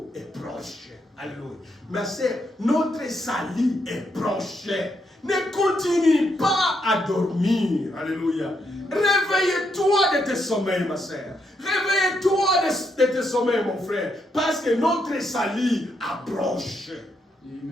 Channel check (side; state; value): both; normal; correlation 0.78